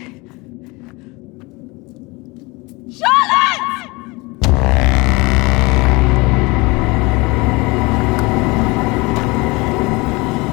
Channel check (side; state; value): right; quieter; 24.8 dB